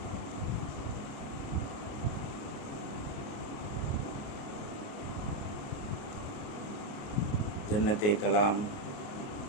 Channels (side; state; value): right; late; 28 ms